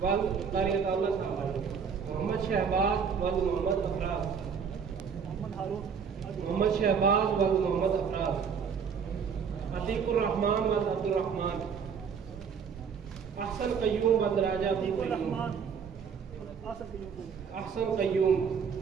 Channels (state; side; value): quieter; left; 6.5 dB